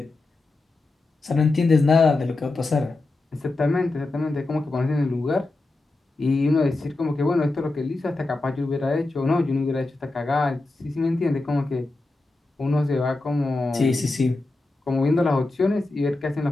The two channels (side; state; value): right; quieter; 3.1 dB